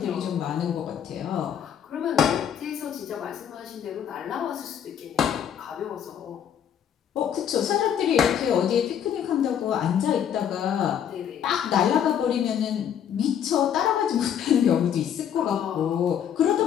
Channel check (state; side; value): quieter; right; 9.0 dB